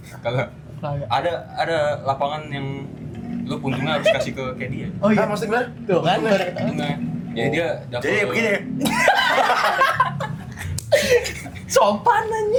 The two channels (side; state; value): both; identical; correlation 1.00